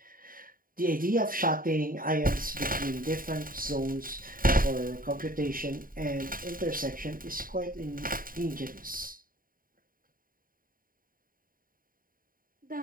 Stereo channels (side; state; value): left; late; 0.41 ms